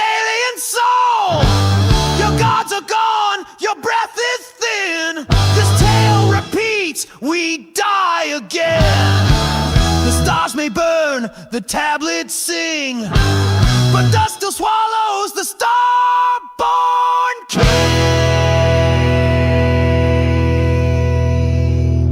soul. Your gods are gone, your breath is thin. This tale repeats, we die again. The stars may burn, the tablets sing, but dust still swallows the star-born king.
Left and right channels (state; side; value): identical; both; correlation 1.00